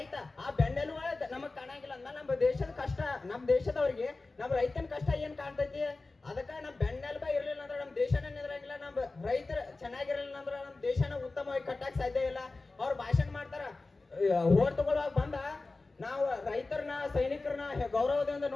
ಆ ಬೆನ್ನೆಲುಬು ನಮಗ್ ಕಾಣಂಗಿಲ್ಲ ಅಂದ್ಮೇಲೆ ನಮ್ಮ ದೇಶದ ಕಷ್ಟ, ನಮ್ ದೇಶದವ್ರಿಗೆ ನಮ್ ರೈತನ ಕಷ್ಟ ಏನ್ ಕಾಣ್ತೈತಿ? ಅದಕ್ಕ ನಮ್ ಬೆನ್ನೆಲುಬ ಇರ್ಲಿಲ್ಲ ಅಂದ್ರೆ ನಮ್ ದೇಶನ ನಿಂದ್ರಂಗಿಲ್ಲ. ನಮ್ ರೈತರ ಚೆನ್ನಾಗಿರ್ಲಿಲ್ಲ ಅಂದ್ರೆ ನಮ್ ದೇಶನ ಉತ್ತಮವಾಗಿ ಕಟ್ಟಕ್ ಸಾಧ್ಯ ಇಲ್ಲ. ಅವ್ರು ಭಾಷಣ ಮಾಡ್ತಾರ, ಓಟ್ ತಗೊಳ್ಳುವಾಗ ಬಂದ ನಾವು ರೈತರನ್ನ ಸೈನಿಕರನ್ನ ಗೌರವದಿಂದ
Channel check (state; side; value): quieter; right; 3.5 dB